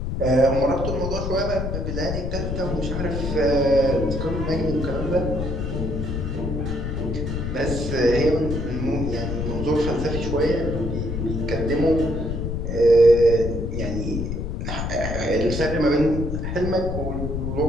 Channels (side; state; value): left; noise; rumble, 3 dB below the sound